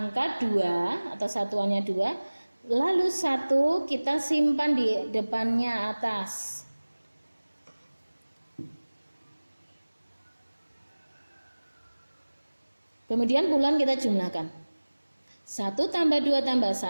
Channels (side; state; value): both; inverted; correlation -1.00